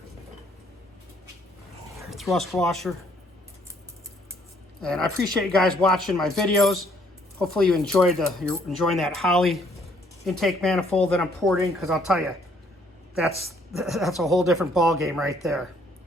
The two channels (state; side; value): normal; both; correlation 0.65